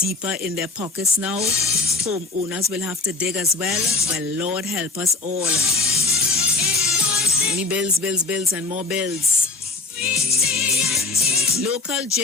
in their pockets now? Homeowners will have to dig as well? Well, Lord help us all. Only bills, and more bills. Local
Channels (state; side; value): quieter; right; 3.6 dB